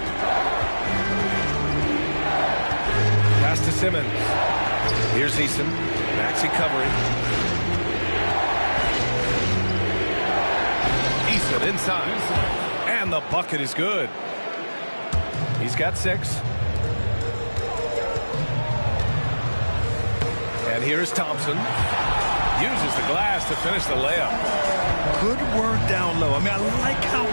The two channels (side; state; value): both; inverted; correlation -1.00